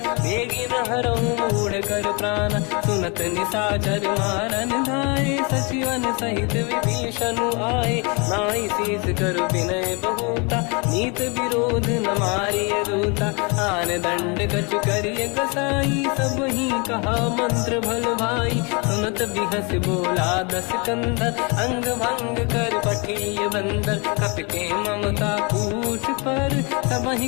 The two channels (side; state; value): right; quieter; 31.3 dB